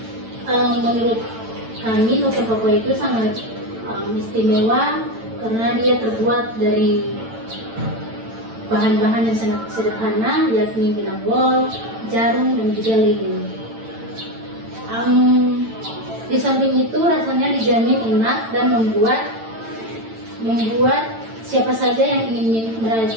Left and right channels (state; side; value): late; left; 8.9 ms